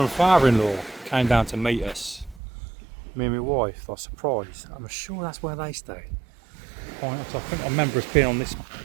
father-in-law came down to meet us. Me and my wife. I was surprised. I'm sure that's where they stayed. Pines. I think I remember us being on this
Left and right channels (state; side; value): drops out; left; at 2.4 s